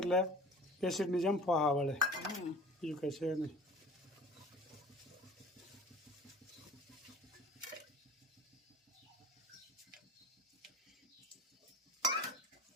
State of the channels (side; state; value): both; normal; correlation 0.43